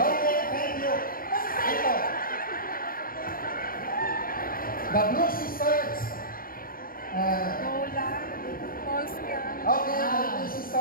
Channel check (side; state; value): right; late; 0.42 ms